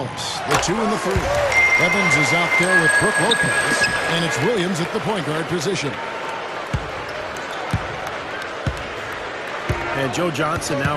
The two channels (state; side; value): identical; both; correlation 1.00